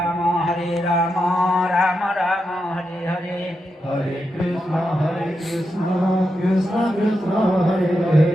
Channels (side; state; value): both; normal; correlation 0.86